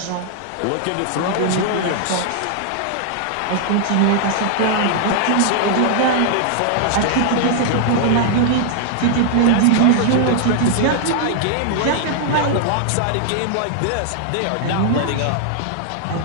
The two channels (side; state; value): both; different; correlation -0.01